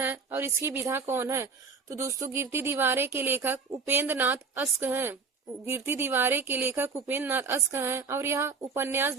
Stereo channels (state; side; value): quieter; left; 4.9 dB